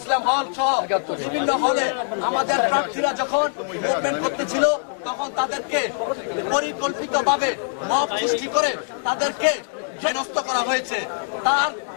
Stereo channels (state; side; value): silent; right; digital silence